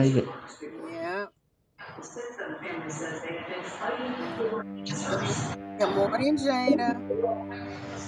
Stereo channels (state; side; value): identical; both; correlation 1.00